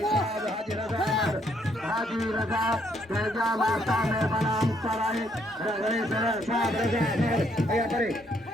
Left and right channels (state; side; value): normal; both; correlation 0.71